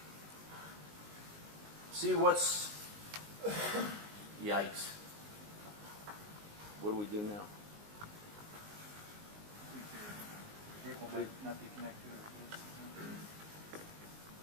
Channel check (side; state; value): left; late; 19 ms